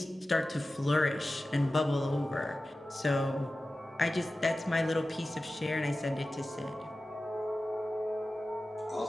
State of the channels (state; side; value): normal; both; correlation 0.95